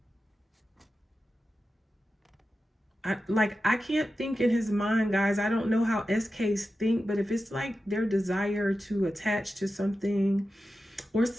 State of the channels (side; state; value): both; normal; correlation 0.92